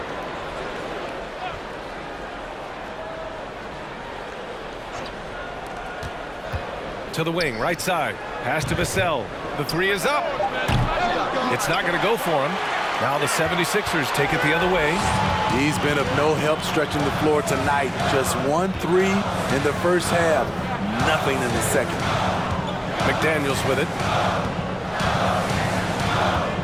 To the wing, right side. Pass to Vassell. The three is up. It's not going to go for him. Now the 76ers take it the other way. He's been of no help stretching the floor tonight. Just 1-3 in the first half. Nothing in the second. McDaniels with it.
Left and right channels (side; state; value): both; identical; correlation 1.00